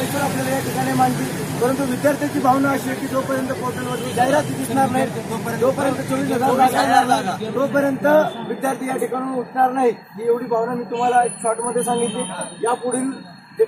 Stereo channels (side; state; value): both; identical; correlation 1.00